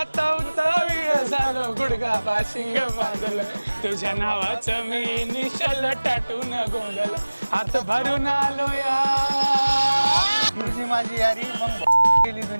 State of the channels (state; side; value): inverted; both; correlation -1.00